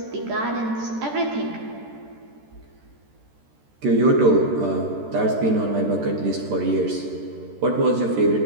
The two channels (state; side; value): late; left; 13 ms